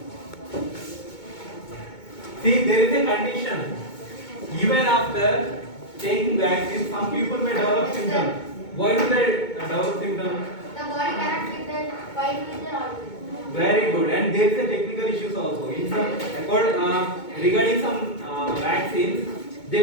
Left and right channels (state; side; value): late; right; 2.2 ms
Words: See, there is a condition. Even after taking vaccine, some people may develop symptoms. Why do they develop symptoms? The body cannot with that fight with the organism. Very good. And there is a technical issues also. In some, regarding some vaccines, they